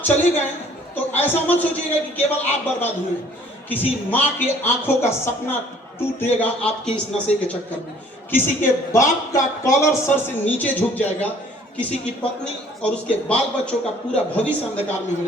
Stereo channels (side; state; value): both; normal; correlation 0.56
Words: चले गए तो ऐसा मत सोचिएगा कि केवल आप बर्बाद हुए। किसी माँ के आंखों का सपना टूटेगा आपके इस नशे के चक्कर में। किसी के बाप का कॉलर सर से नीचे झुक जाएगा, किसी की पत्नी और उसके बाल बच्चों का पूरा भविष्य अंधकार में हो